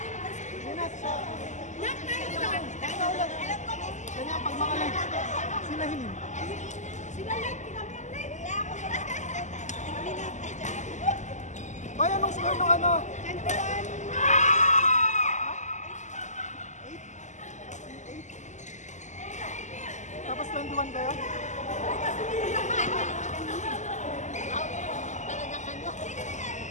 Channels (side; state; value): right; late; 0.34 ms